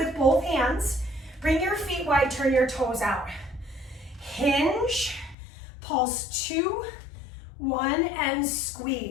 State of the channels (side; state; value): right; drops out; at 5.4 s